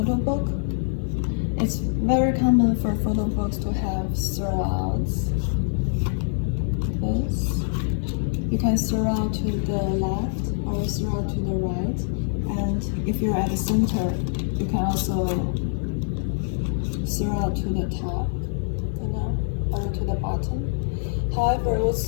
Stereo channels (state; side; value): silent; right; digital silence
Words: book. It's very common for photo books to have surrounds. This. You can surround to the left or surround to the right, and if you're at the center, you can also surround to the top, or to the bottom. However,